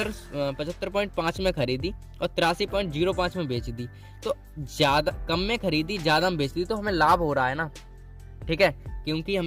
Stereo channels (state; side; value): identical; both; correlation 1.00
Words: में खरीदी और 83.05 में बेच दी। तो ज्यादा कम में खरीदी, ज्यादा में बेच दी, तो हमें लाभ हो रहा है ना, ठीक है, क्योंकि